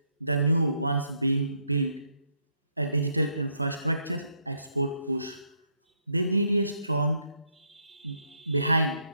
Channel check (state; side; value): inverted; both; correlation -0.76